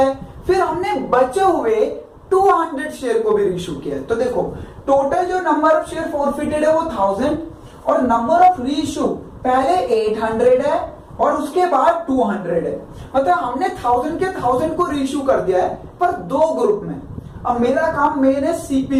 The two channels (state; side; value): identical; both; correlation 1.00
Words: फिर हमने बचे हुए 200 शेयर को भी रीइशू किया है। तो देखो टोटल जो नंबर ऑफ शेयर फॉरफिटेड है वो 1000 और नंबर ऑफ रीइशू पहले 800 है और उसके बाद 200 है। मतलब हमने 1000 के 1000 को रीइशू कर दिया है पर 2 ग्रुप में। अब मेरा काम मेन है